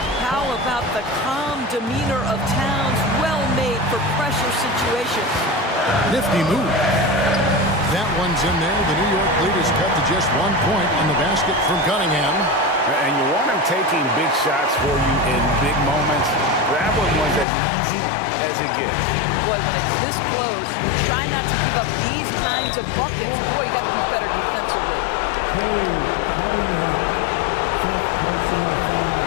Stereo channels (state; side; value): drops out; right; at 17.4 s